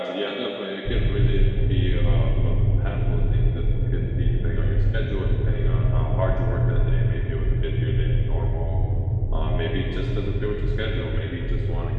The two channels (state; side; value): identical; both; correlation 1.00